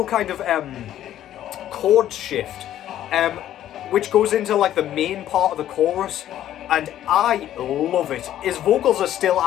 kind of chord shift, which goes into like the main part of the chorus, and I love it. His vocals are still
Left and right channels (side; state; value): right; quieter; 11.9 dB